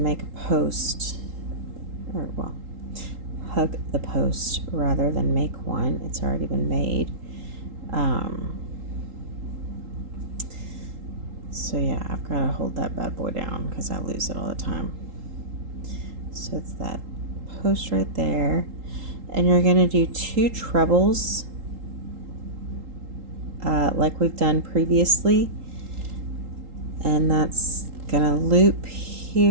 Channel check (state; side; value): late; left; 3.8 ms